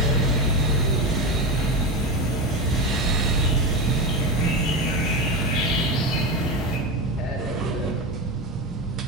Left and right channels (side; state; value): both; normal; correlation 0.18